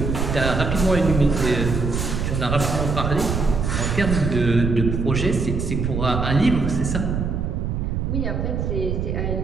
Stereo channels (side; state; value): right; noise; rumble, 1 dB below the sound